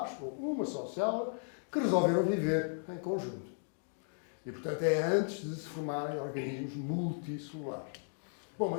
ou uma só célula, que resolveram viver em conjunto. E, portanto, é antes de se formarem organismos multicelulares. Bom,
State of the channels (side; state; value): right; silent; digital silence